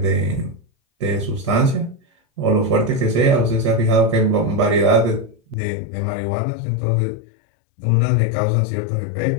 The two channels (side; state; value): right; drops out; at 5.6 s